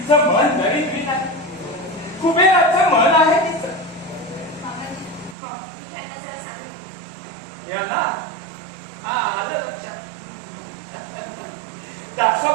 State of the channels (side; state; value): left; drops out; at 5.4 s